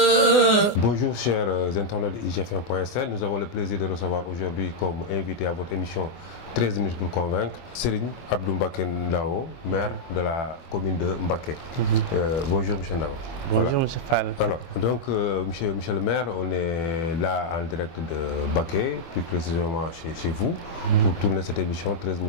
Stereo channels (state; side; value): late; right; 24 ms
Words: Bonjour chers internautes de IGFM.sn, nous avons le plaisir de recevoir aujourd'hui comme invité à votre émission 13 minutes pour convaincre Serigne Abdou Mbacké Ndao, maire de la commune de Mbacké. Bonjour monsieur Ndao. Bonjour monsieur Fall. Alors, donc monsieur le maire, on est là en direct de Mbacké, plus précisément chez vous, pour tourner cette émission 13